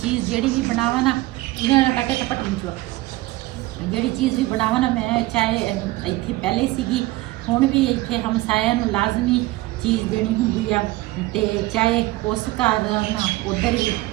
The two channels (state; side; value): quieter; left; 18.9 dB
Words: ਜਿਹੜੀ ਵੀ ਬਣਾਵਾਂ ਨਾ ਇਹਨਾਂ ਨਾਲ ਕੱਟੇ ਟਪਟ ਵਿੱਚੋਂ ਜਿਹੜੀ ਚੀਜ਼ ਵੀ ਬਣਾਵਾਂ ਨਾ ਮੈਂ ਚਾਹੇ ਇੱਥੇ ਪਹਿਲੇ ਸੀਗੀ ਹੁਣ ਵੀ ਇੱਥੇ ਹਮਸਾਇਆਂ ਨੂੰ ਲਾਜ਼ਮੀ ਚੀਜ਼ ਦੇਣੀ ਹੁੰਦੀ ਆ ਤੇ ਚਾਹੇ ਉਸ ਘਰ ਨਾ ਉੱਧਰ ਵੀ